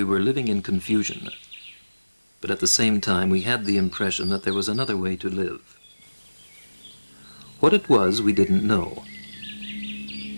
were living in confusion, but at the same time we had the impression that there was another way to live. What it was we didn't know,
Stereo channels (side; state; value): both; inverted; correlation -1.00